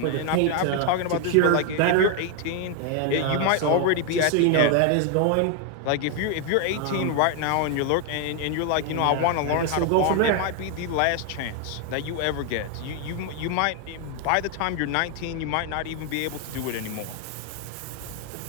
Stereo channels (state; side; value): different; both; correlation 0.01